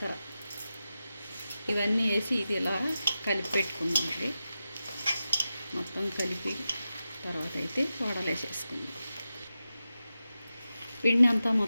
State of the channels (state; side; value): inverted; both; correlation -0.92